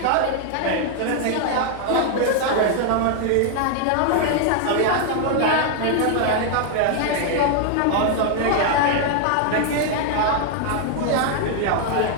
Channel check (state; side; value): different; both; correlation 0.00